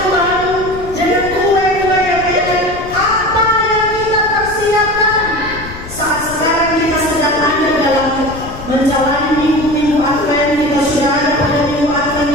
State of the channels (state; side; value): noise; left; rumble, 13 dB below the sound